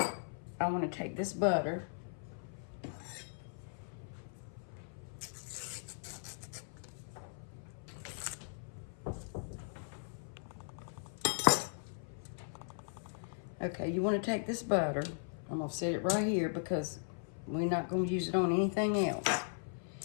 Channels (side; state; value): right; silent; 52 dB below the other